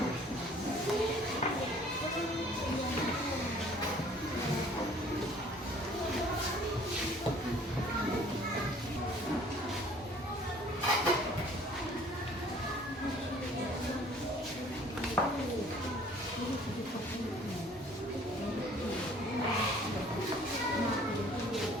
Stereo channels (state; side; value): normal; both; correlation 0.54